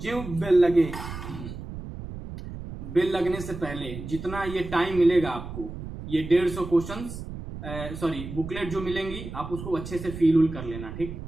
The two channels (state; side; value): noise; right; rumble, 10 dB below the sound